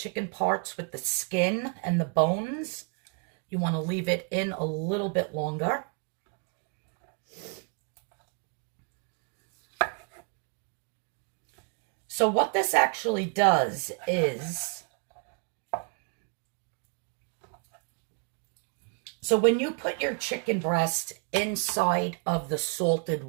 parts with the skin and the bones, you want to leave it in a little bit longer. So what this actually does is, so when you put your chicken breast inside of the salted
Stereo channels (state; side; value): quieter; left; 38.5 dB